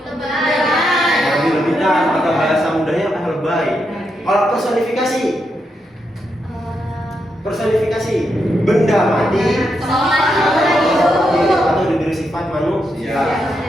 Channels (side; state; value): both; normal; correlation 0.83